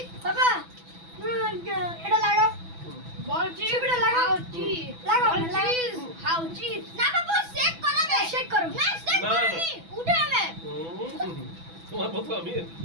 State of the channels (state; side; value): late; left; 6.0 ms